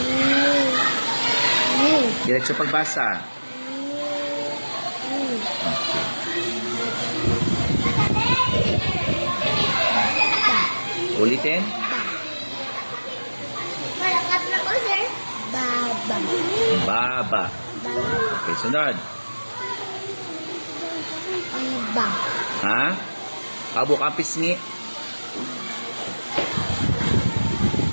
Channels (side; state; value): both; inverted; correlation -1.00